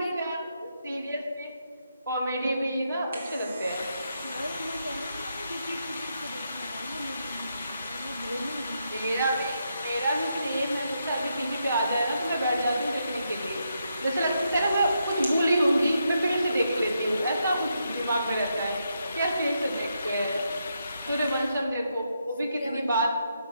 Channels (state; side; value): inverted; both; correlation -0.81